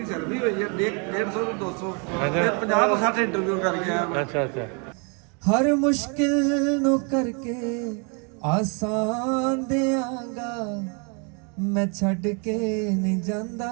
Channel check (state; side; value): quieter; left; 35.5 dB